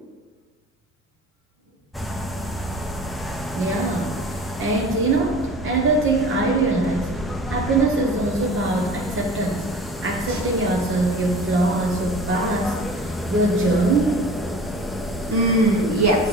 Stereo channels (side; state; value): both; normal; correlation 0.41